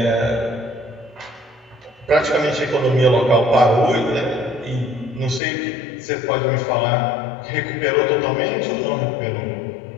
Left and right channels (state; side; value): drops out; right; at 5.4 s